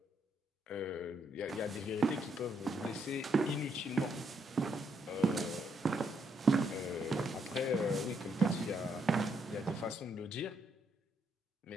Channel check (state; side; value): normal; both; correlation 0.75